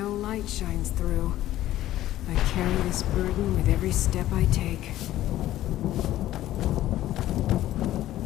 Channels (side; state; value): right; quieter; 14.0 dB